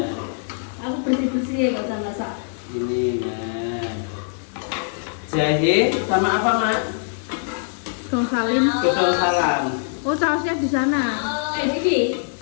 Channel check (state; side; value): silent; right; digital silence